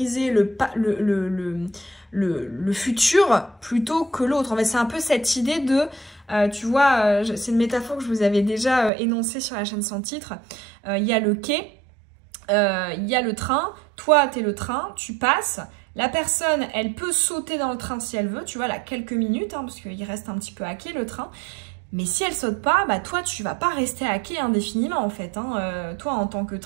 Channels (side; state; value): left; drops out; at 8.9 s